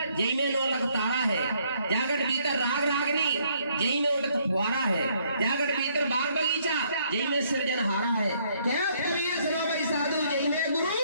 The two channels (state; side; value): inverted; both; correlation -0.68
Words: जई में 9 लाख तारा है। जागट भीतर राग रागनी, जई में उठत फुहारा है। जागट भीतर बाग बगीचा, जई में सृजनहारा है। क्या करिए सुनो भाई साधु, जई में